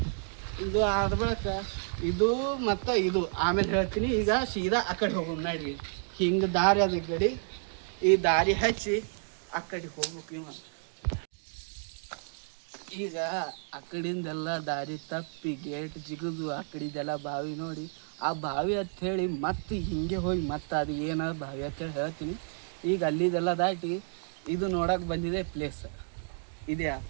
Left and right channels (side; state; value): left; silent; 57 dB below the other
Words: ಇದು ಆದ ಬಳಿಕ ಇದು ಮತ್ತು ಇದು ಆಮೇಲೆ ಹೇಳ್ತೀನಿ. ಈಗ ಸೀದಾ ಆ ಕಡೆ ಹೋಗೋಣ ನೋಡ್ರಿ. ಹಿಂಗೆ ದಾರಿ ಅದ ಗಡಿ, ಈ ದಾರಿ ಹಚ್ಚಿ ಆ ಕಡೆ ಹೋಗ್ಬೇಕು. ಈಗ ಆ ಕಡೆಯಿಂದೆಲ್ಲ ದಾರಿ ತಪ್ಪಿ ಗೇಟ್ ಜಿಗಿದು ಆ ಕಡೆದೆಲ್ಲ ಬಾವಿ ನೋಡಿ, ಆ ಬಾವಿ ಅಂತ ಹೇಳಿ ಮತ್ತೆ ಹಿಂಗೆ ಹೋಗಿ ಮತ್ತೆ ಅದು ಏನ ಬಾವಿ ಅಂತೇಳಿ ಹೇಳ್ತೀನಿ. ಈಗ ಅಲ್ಲಿದೆಲ್ಲ ದಾಟಿ ಇದು ನೋಡಕ್ಕೆ ಬಂದಿದೆ ಪ್ಲೇಸ್. ಇದೆ ಆ